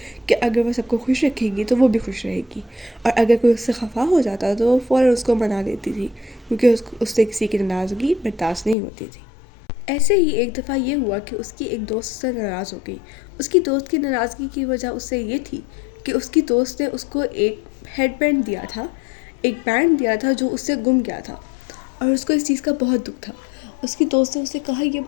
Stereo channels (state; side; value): drops out; right; at 8.8 s